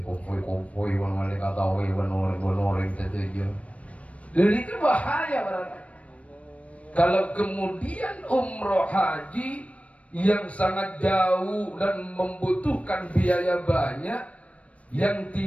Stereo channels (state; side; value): late; right; 0.064 ms